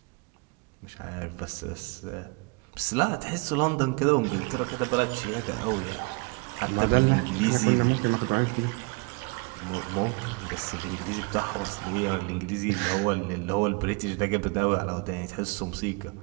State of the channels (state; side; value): quieter; left; 30.4 dB